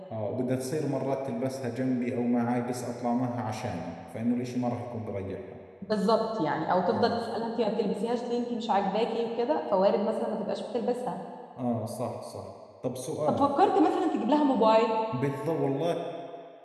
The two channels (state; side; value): identical; both; correlation 1.00